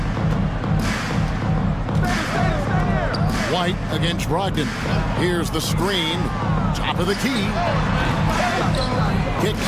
White against Brogdon. Here's the screen. Top of the key.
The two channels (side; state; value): both; identical; correlation 1.00